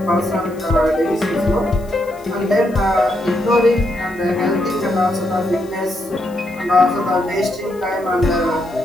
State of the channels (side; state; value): left; noise; hiss, 26 dB below the sound